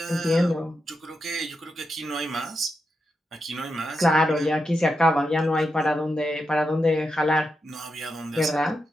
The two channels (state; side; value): normal; both; correlation 0.86